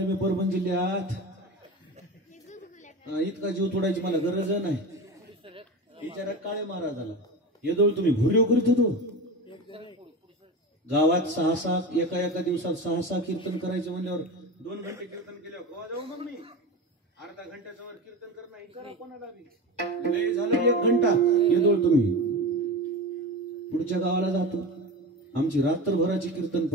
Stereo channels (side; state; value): both; normal; correlation 0.26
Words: मी परभणी जिल्ह्यात, इतका जीव तोडायची मला गरज नाही. विचारा काळे महाराजाला येदोळ तुम्ही भुर्यो करीत होतो. गावात 6-6 एका दिवसात 6-6 कीर्तन करायचे म्हणल्यावर 2 घंटे कीर्तन केल्यावर गोवा जाऊ मग मी अर्धा घंट्याच्या वर कीर्तन करणं करा कोणाला बी. लय झालं 1 घंटा येदोळ तुम्ही. पुढच्या गावाला जातो. आमची रात्रभराची कीर्तन